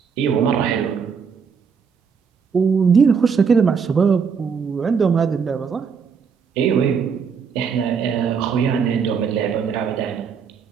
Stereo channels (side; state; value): left; quieter; 6.2 dB